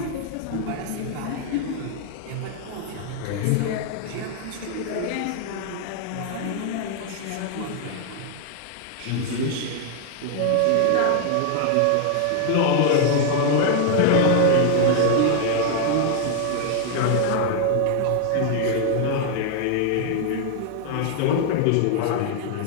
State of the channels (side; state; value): both; different; correlation 0.00